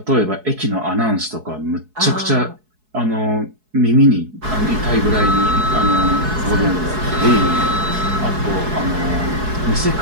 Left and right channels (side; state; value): left; late; 4.7 ms